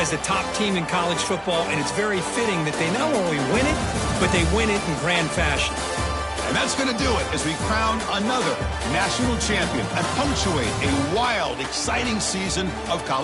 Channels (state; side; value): identical; both; correlation 1.00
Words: the top team in college football, and it's very fitting that they not only win it, but they win it in grand fashion. And that's going to do it as we crown another national champion and punctuate a wild, exciting season of